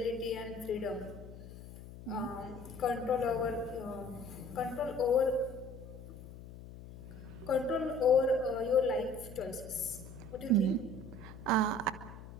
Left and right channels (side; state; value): left; noise; hum, 14 dB below the sound